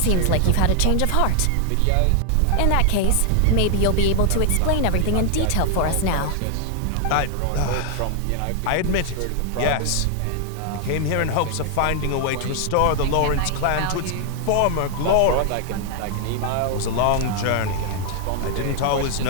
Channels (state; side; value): different; both; correlation 0.00